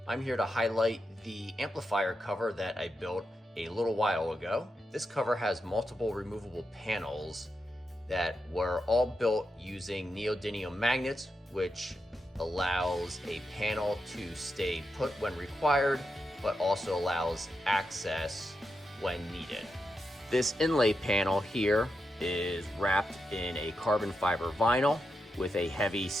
I'm here to highlight the amplifier cover that I built a little while ago. This cover has multiple removable panels that were all built using neodymium magnets, which allows a panel to stay put when required, but also allows access when needed. This inlay panel here is wrapped in a carbon fiber vinyl with a heavy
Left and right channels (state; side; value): normal; both; correlation 0.86